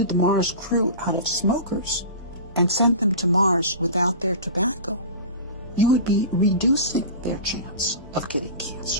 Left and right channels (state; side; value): inverted; both; correlation -0.33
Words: the Mars crew out of smokers and sent them to Mars without their tobacco, you would be reducing their chance of getting